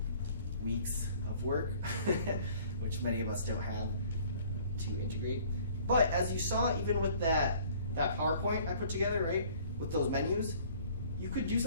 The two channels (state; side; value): inverted; both; correlation -0.54